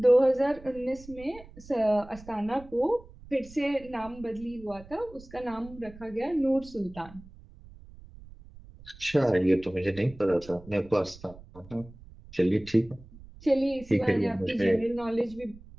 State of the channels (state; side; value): noise; right; rumble, 20 dB below the sound